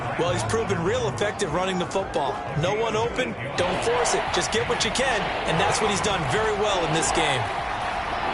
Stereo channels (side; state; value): both; identical; correlation 1.00